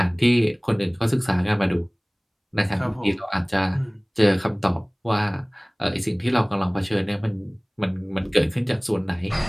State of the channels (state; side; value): identical; both; correlation 1.00